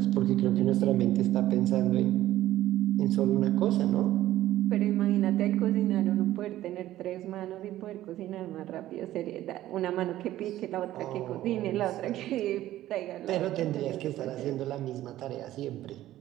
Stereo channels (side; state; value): left; quieter; 14.2 dB